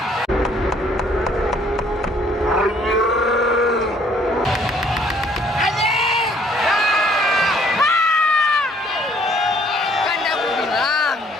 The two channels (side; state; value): both; normal; correlation 0.62